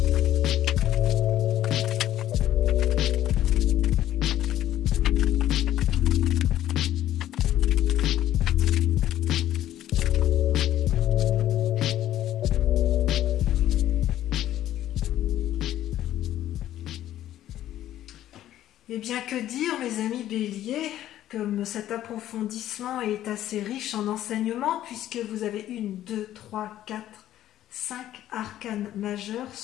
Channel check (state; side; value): quieter; right; 12.7 dB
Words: Eh bien, que dire, mes amis béliers, comme cet approfondissement est assez riche en enseignements, puisque vous avez 1, 2, 3, 4, 5 arcanes majeurs